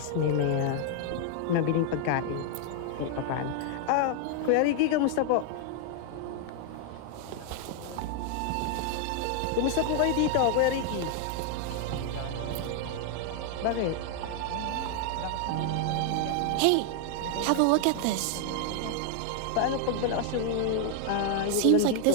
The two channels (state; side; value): different; both; correlation 0.00